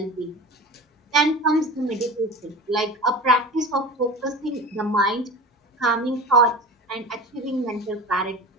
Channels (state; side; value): normal; both; correlation 0.32